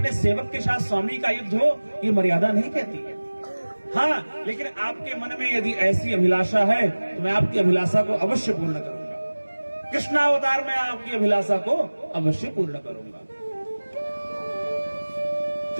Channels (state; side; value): inverted; both; correlation -1.00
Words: सेवक के साथ स्वामी का युद्ध हो ये मर्यादा नहीं कहती है। हाँ, लेकिन आपके मन में यदि ऐसी अभिलाषा है तो मैं आपकी अभिलाषा को अवश्य पूर्ण करूंगा। कृष्णावतार में आपकी अभिलाषा को अवश्य पूर्ण करूंगा।